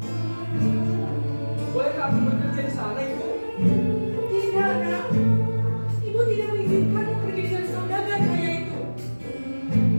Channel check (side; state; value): both; inverted; correlation -1.00